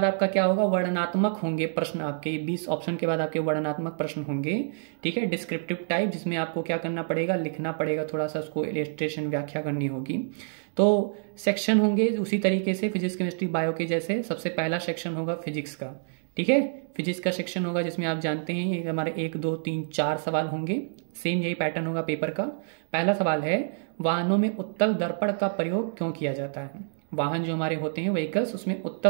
आपका क्या होगा? वर्णनात्मक होंगे प्रश्न आपके। 20 ऑप्शन के बाद आपके वर्णनात्मक प्रश्न होंगे। ठीक है, डिस्क्रिप्टिव टाइप, जिसमें आपको क्या करना पड़ेगा? लिखना पड़ेगा, थोड़ा सा उसको इलस्ट्रेशन व्याख्या करनी होगी। तो सेक्शन होंगे उसी तरीके से फिजिक्स, केमिस्ट्री, बायो के जैसे। सबसे पहला सेक्शन होगा फिजिक्स का। ठीक है, फिजिक्स का सेक्शन होगा जिसमें आप जानते हैं ये हमारे 1, 2, 3, 4 सवाल होंगे। सेम यही पैटर्न होगा पेपर का। पहला सवाल है, वाहनों में उत्तल दर्पण का प्रयोग क्यों किया जाता है? वाहन जो हमारे होते हैं व्हीकल्स, उसमें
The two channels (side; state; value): left; silent; digital silence